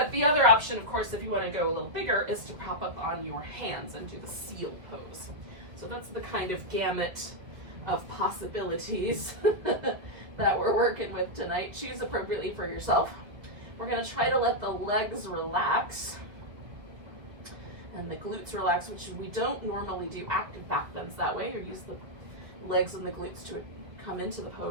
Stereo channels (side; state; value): left; late; 1.8 ms